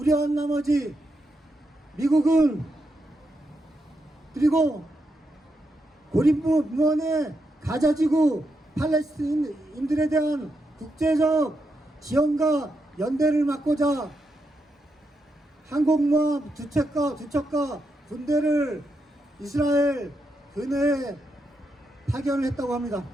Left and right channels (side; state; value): both; normal; correlation 0.83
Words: 나머지 미국은 그리고 고립무원의 가자지구 팔레스타인인들에 대한 국제적 지원과 연대를 막고자 항공모함 두 척과 군대를 이스라엘 근해에 파견을 했다고 합니다.